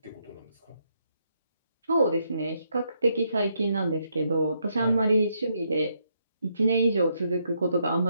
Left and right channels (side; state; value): both; inverted; correlation -0.76